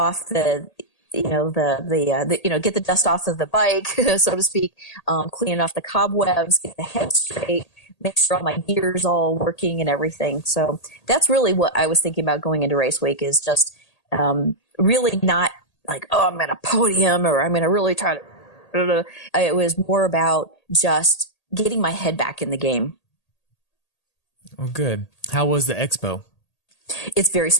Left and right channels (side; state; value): right; late; 1.8 ms